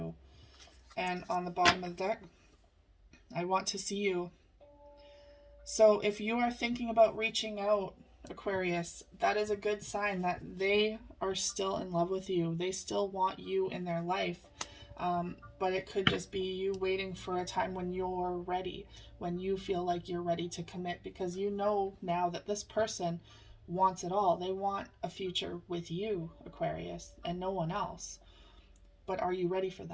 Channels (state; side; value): identical; both; correlation 1.00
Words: And on the bottom of the deck, I want to see you. So if you are thinking about reaching out, Aquarius, that is a good sign that they are still in love with you. They still want you in their life. But it could just be you waiting for a time when you're ready, when you feel like you're ready to commit, because you know now that this person wants it all. They want a future with you, Aquarius, and no one else. But are you ready for